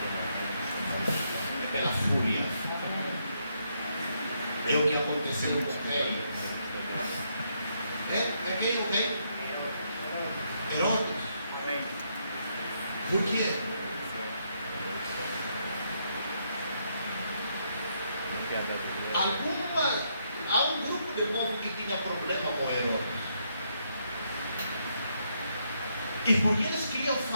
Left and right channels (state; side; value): inverted; both; correlation -0.76